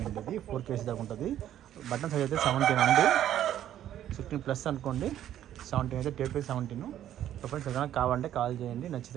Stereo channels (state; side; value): quieter; left; 11.5 dB